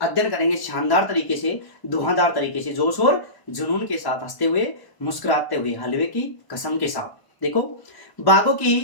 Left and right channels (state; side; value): late; right; 1.0 ms